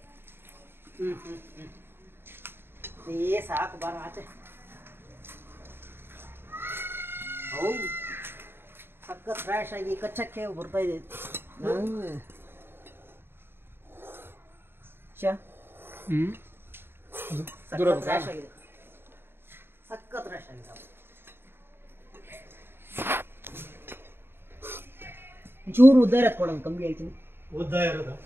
ಸಾಕು, ಬಾರ ಆಚೆ. ಹೌದು, ಸಖತ್ ಫ್ರೆಶ್ ಆಗಿ ಕಚ್ಚಕ್ಕೆ ಬರ್ತಾ ಇದೆ. ಸಖತ್ ಫ್ರೆಶ್ ಆಗಿದೆ, ಸಖತ್ ಫ್ರೆಶ್ ಆಗಿದೆ. ಚೂರು ಉದ್ದ ಇರತ್ತೆ ಕೊಡೋದು, ಕಮ್ಮಿ ಹೇಳ್ತೀನಿ. ಉದ್ದ ಇರೋದು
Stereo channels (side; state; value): left; late; 0.11 ms